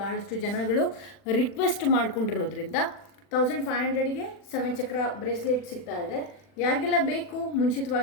ಜನಗಳು ರಿಕ್ವೆಸ್ಟ್ ಮಾಡ್ಕೊಂಡಿರೋದ್ರಿಂದ 1500ಗೆ 7 ಚಕ್ರ ಬ್ರೇಸ್ಲೆಟ್ ಸಿಗ್ತಾ ಇದೆ. ಯಾರಿಗೆಲ್ಲ ಬೇಕು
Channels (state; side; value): late; right; 40 ms